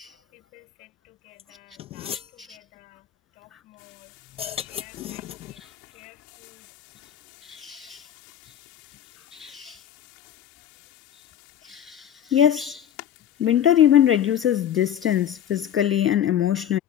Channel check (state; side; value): quieter; right; 10.2 dB